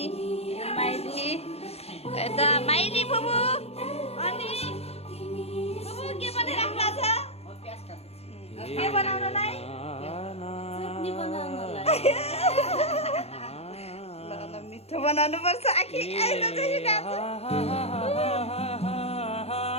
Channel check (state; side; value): late; right; 0.30 ms